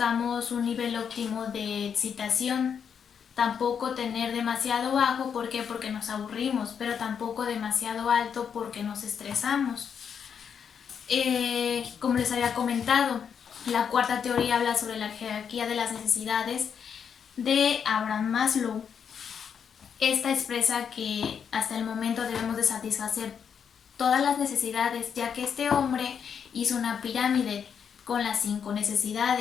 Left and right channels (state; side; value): quieter; right; 7.3 dB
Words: un nivel óptimo de excitación, tampoco tener demasiado bajo, ¿por qué? Porque nos aburrimos, pero tampoco demasiado alto porque nos estresamos. Como les había comentado, la cuarta teoría habla sobre la jerarquía de las necesidades de Abraham Maslow. Esta expresa que hasta el momento debemos de satisfacer todas las necesidades, ya que este hombre hizo una pirámide con las 5